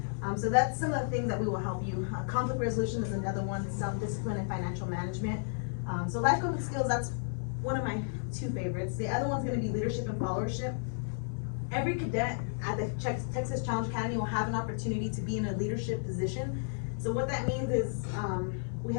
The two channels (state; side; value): silent; right; 56 dB below the other